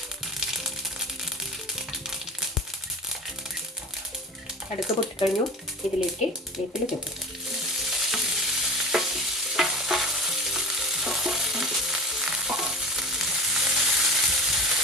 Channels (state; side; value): normal; both; correlation 0.32